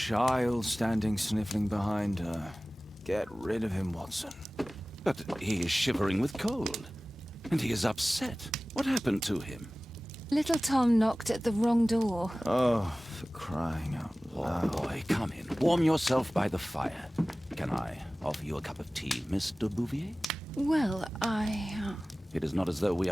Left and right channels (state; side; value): normal; both; correlation 0.98